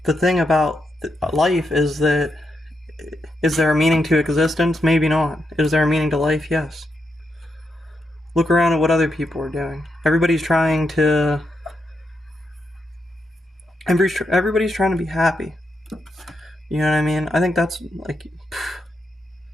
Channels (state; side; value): normal; both; correlation 0.83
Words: the thing about life is that, is there a meaning to existence? Maybe not. Is there a meaning to life? Yes. Look around at what other people are doing. Everybody's trying to be happy. You know what I mean? I think that's, like,